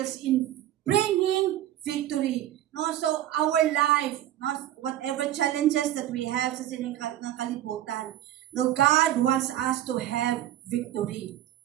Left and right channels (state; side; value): quieter; left; 12.8 dB